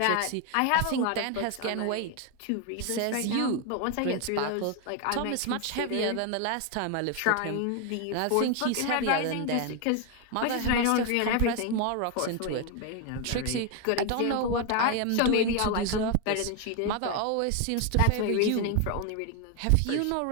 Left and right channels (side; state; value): both; different; correlation 0.01